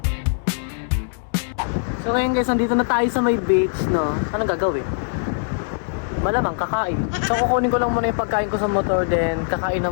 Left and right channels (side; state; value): right; silent; digital silence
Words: So ngayon guys, nandito na tayo sa may beach, no? Anong gagawin? Malamang kakain. So kukunin ko lang muna yung pagkain ko sa motor, then kakain na